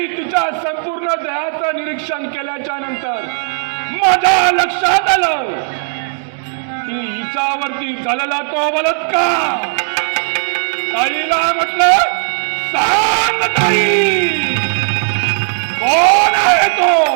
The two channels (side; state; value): left; silent; digital silence